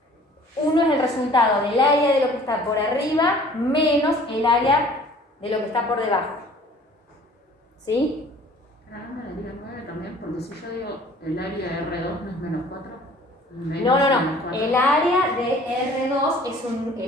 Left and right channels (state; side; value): normal; both; correlation 0.51